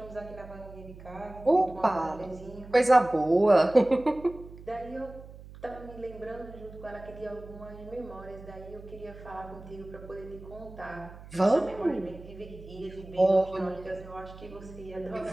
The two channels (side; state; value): right; noise; hum, 17 dB below the sound